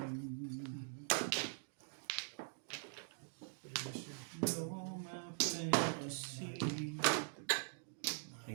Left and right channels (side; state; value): left; silent; digital silence